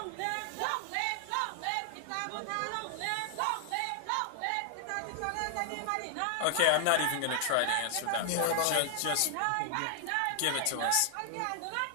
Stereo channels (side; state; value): both; different; correlation 0.00